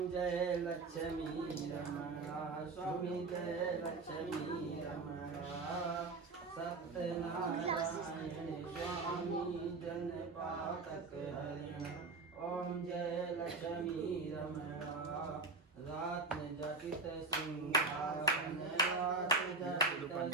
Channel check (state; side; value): quieter; left; 3.8 dB